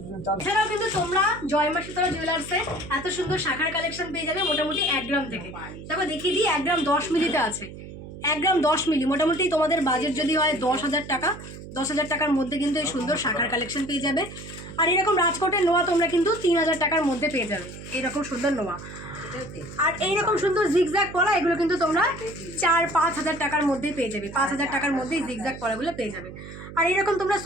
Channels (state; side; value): noise; right; hum, 13 dB below the sound